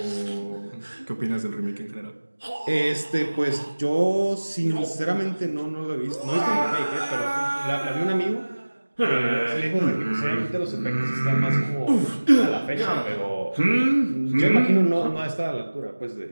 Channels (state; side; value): inverted; both; correlation -1.00